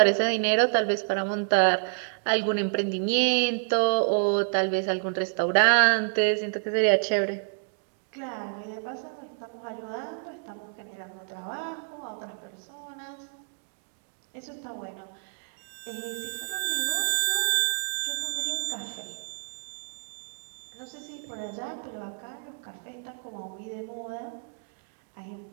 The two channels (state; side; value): silent; left; digital silence